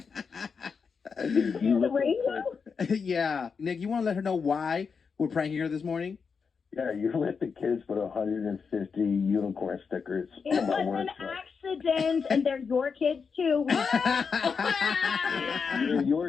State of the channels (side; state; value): right; quieter; 5.6 dB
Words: The radio? Yeah. Nick, you want to let her know why we're pranking her this morning? Yeah, you let the kids put 150 unicorn stickers It on my was work an truck. accident, and they're your kids, too. They're